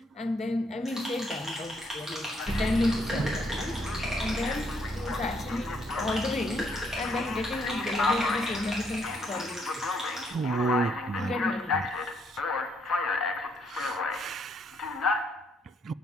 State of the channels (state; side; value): normal; both; correlation 0.71